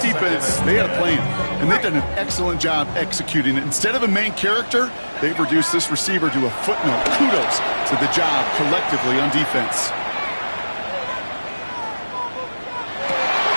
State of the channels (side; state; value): both; inverted; correlation -1.00